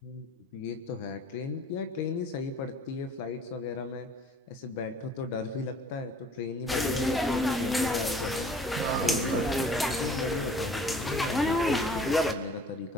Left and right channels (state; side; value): normal; both; correlation 0.52